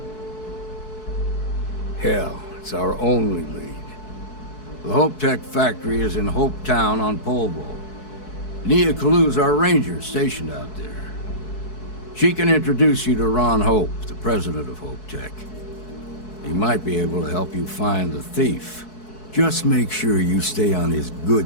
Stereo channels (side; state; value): right; late; 4.6 ms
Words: Hell, it's our only lead. The Hope Tech factory is in Hope Town on Polvo. Nia Kalu's our ranger stationed out there. She can introduce you to Ron Hope, the president of Hope Tech. He might be able to help you find the thief. Just make sure you stay on his